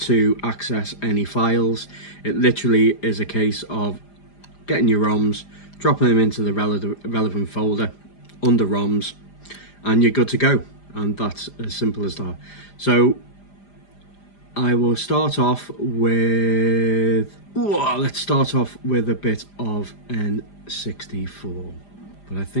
access any files. It literally is a case of getting your ROMs, dropping them into the relevant folder under ROMs, and you're good to go. And that's as simple as that. So I will start off with, let's start off with a bit of N64. But I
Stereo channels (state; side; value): late; right; 5.0 ms